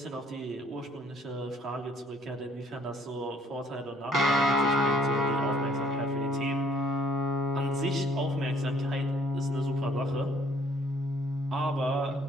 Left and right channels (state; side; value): normal; both; correlation 0.62